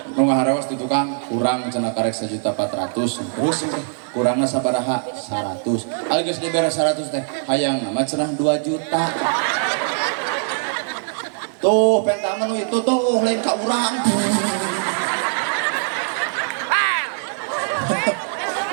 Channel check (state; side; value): silent; left; digital silence